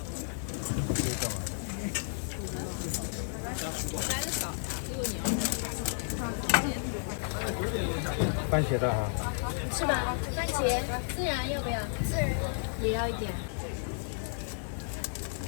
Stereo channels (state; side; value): silent; right; digital silence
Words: 番茄的啊。是吧？番茄孜然要不要？孜然也要一点。